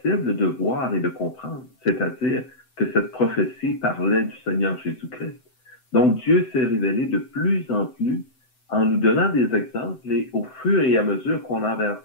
de voir et de comprendre. C'est-à-dire que cette prophétie parlait du Seigneur Jésus-Christ. Donc Dieu s'est révélé de plus en plus en nous donnant des exemples et au fur et à mesure qu'on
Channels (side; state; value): right; late; 7.8 ms